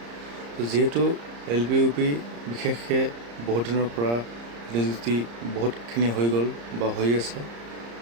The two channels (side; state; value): left; late; 34 ms